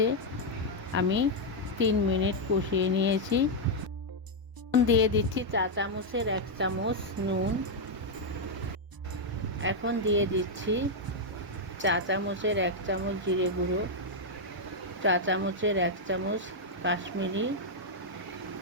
আমি 3 মিনিট কষিয়ে নিয়েছি। দিয়ে দিচ্ছি চা চামচের 1 চামচ নুন। এখন দিয়ে দিচ্ছি চা চামচের 1 চামচ জিরে গুঁড়ো, চা চামচের 1 চামচ কাশ্মীরি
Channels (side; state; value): left; late; 1.0 ms